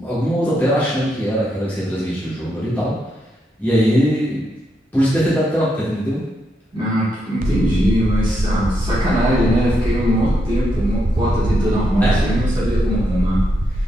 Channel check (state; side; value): normal; both; correlation 0.81